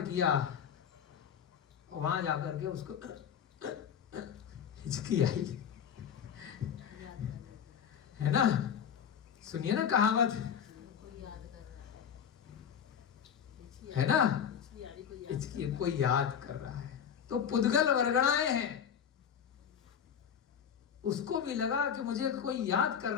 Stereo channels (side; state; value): right; quieter; 8.2 dB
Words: किया, वहां जाकर के उसको हिचकी आई, है ना? सुनिए ना कहावत, है ना? हिचकी कोई याद कर रहा है, तो पुद्गल वर्गणाएं हैं। उसको भी लगा कि मुझे कोई याद कर